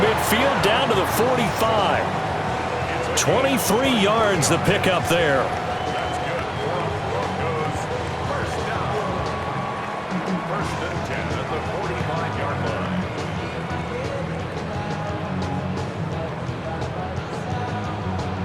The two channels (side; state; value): both; identical; correlation 1.00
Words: down to the 45. 23 yards the pickup there. First and 10 at the 45-yard line.